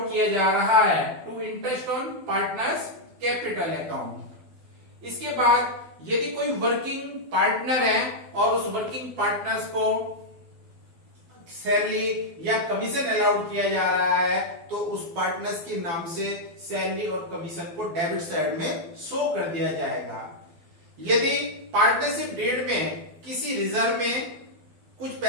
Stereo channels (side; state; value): left; late; 12 ms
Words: किया जा रहा है to interest on partners capital account. इसके बाद यदि कोई वर्किंग पार्टनर है और उस वर्किंग पार्टनर्स को सैलरी या कमीशन अलाउड किया जा रहा है तो उस पार्टनर्स के नाम से सैलरी और कमीशन को डेबिट साइड में शो कर दिया जाएगा। यदि पार्टनरशिप डीड में किसी रिजर्व में कुछ